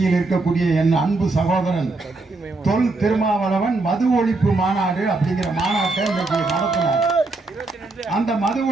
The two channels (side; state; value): left; quieter; 3.3 dB